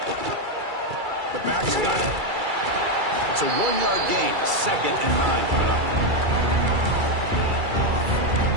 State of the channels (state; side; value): late; left; 2.3 ms